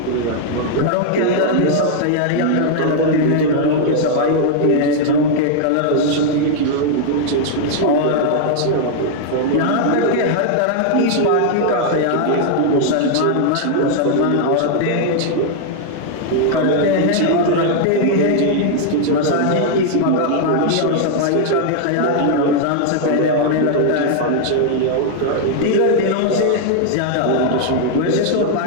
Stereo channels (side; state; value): both; different; correlation 0.00